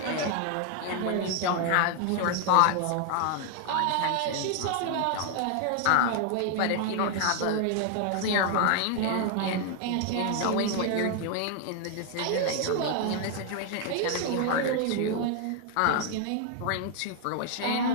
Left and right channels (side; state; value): both; different; correlation 0.00